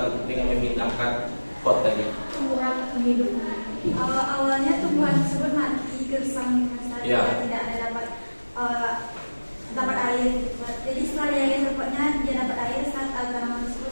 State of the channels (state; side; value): inverted; both; correlation -1.00